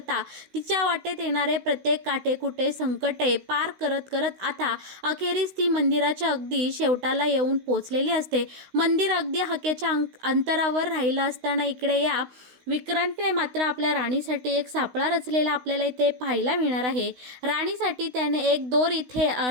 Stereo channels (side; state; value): left; late; 16 ms